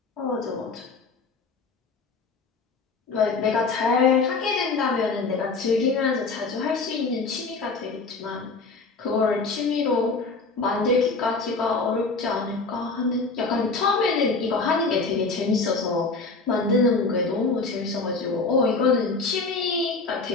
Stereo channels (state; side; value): quieter; right; 4.0 dB